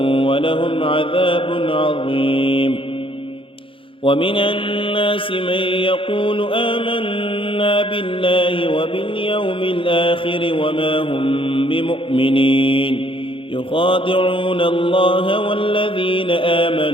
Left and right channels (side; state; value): right; late; 0.25 ms